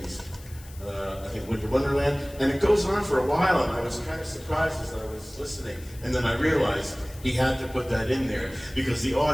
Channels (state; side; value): noise; left; hiss, 21 dB below the sound